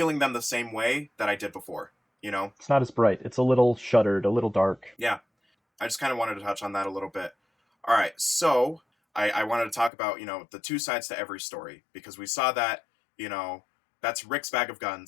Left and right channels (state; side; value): drops out; right; at 9.9 s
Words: them the same way that I did before. You know? It's not as bright. It's a little shuttered, a little dark. Yeah. I just kind of wanted to touch on that a little bit. All right, so I wanted to talk about, the two sides to every story, because we saw that, that's Rick's bag of